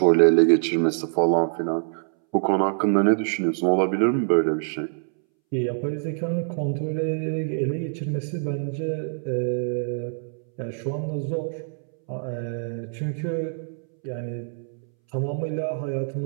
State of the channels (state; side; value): silent; left; 62 dB below the other